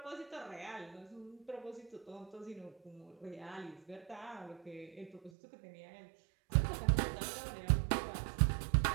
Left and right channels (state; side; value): drops out; left; at 5.3 s